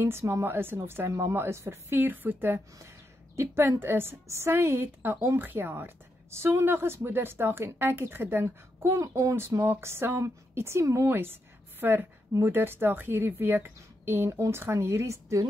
is en of sy mamma is vir 4 voete. Die punt is, sy het 'n omgee hart. Sondag is Moedersdag en ek het gedink, kom ons maak saam ietsie moois vir Moedersdag hierdie week en ons gaan hierdie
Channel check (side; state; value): both; normal; correlation 0.83